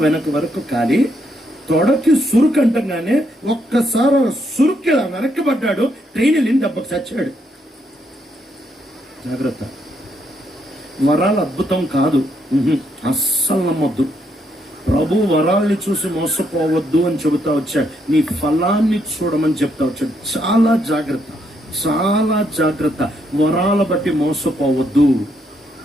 వెనక వరకు కాలి తొడకి సురుకు అంటంగానే ఒక్కసారి సురుక్కి వెనక్కి పడ్డాడు. ట్రైన్ వెళ్ళిన దెబ్బకు చచ్చాడు. జాగ్రత్త, వరాలు అద్భుతం కాదు, అస్సలు నమ్మొద్దు. ప్రభు వరాల్ని చూసి మోసపోవద్దు అని చెబుతా వచ్చాడు. నీ ఫలాన్ని చూడమని చెప్తా వచ్చాడు. చాలా జాగ్రత్త, చాలా జాగ్రత్త. వరాల బట్టి మోసపోవద్దు.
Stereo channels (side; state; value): both; normal; correlation 0.76